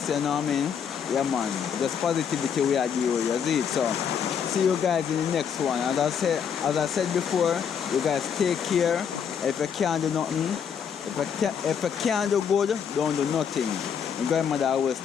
you know what I mean? Yeah man, just positivity we are doing, you see it. So see you guys in the next one. As I said before, you guys take care. If you can't do nothing, if you can't do good, don't do nothing. My grandmother always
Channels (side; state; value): right; quieter; 7.5 dB